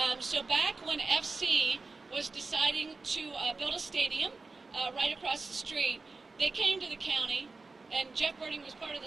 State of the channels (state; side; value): quieter; left; 3.9 dB